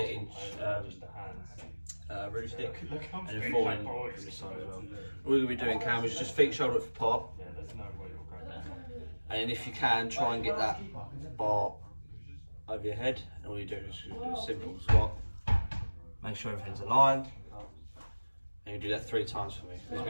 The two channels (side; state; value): both; inverted; correlation -1.00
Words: root stick, and then 4 in from this side as well. All you're going to be doing, Cam, is just feet shoulder width apart. And then if you can, try and get that bar over your head. And all you're doing is do a simple squat. Make sure everything's aligned. And you do that 3 times for me. There's